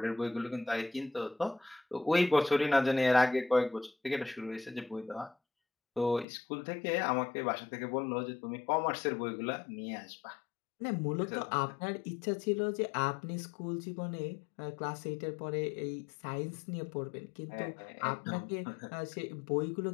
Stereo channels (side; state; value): right; drops out; at 6.2 s